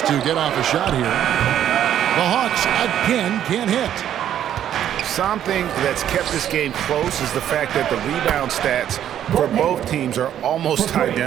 to get off a shot here. The Hawks again can't hit. Something that's kept this game close is the fact that the rebound stats for both teams are almost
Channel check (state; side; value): quieter; left; 10.6 dB